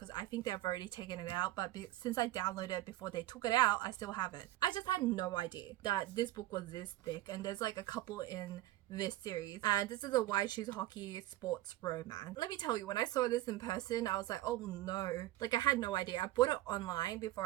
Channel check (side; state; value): left; quieter; 16.0 dB